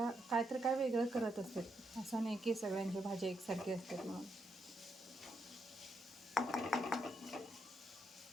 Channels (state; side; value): normal; both; correlation 0.80